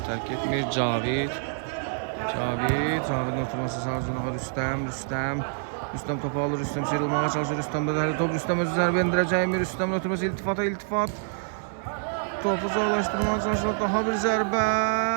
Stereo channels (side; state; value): left; silent; digital silence